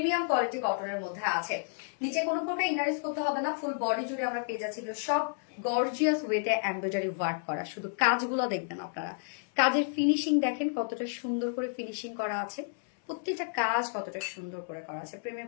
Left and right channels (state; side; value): silent; right; 57 dB below the other